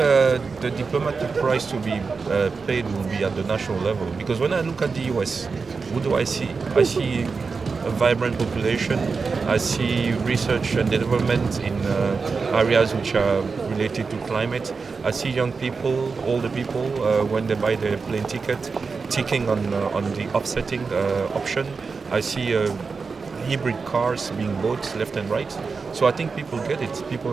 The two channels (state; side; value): quieter; left; 4.8 dB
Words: diplomatic price to be paid will be at the national level, because when I look at the US, what do I see? I see a vibrant population. I see research and development in areas which are related to climate. I see young people, older people, when they buy their plane ticket, ticking on the offsetting option. I see hybrid cars being bought left and right. So I think people get it. People